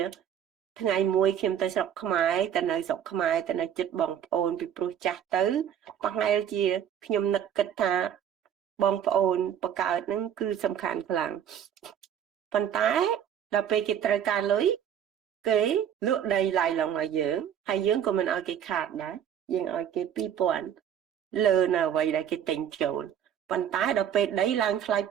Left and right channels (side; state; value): left; quieter; 9.3 dB